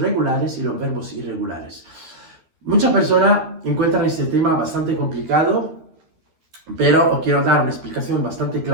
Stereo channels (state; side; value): late; left; 12 ms